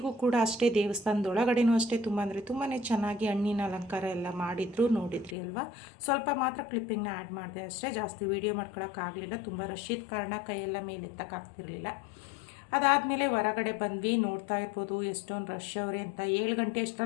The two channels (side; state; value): right; drops out; at 5.4 s